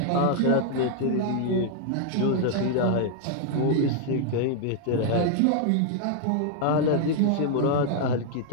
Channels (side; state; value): both; different; correlation 0.00